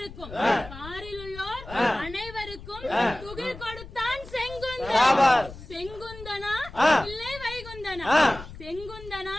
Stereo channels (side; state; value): left; noise; rumble, 15 dB below the sound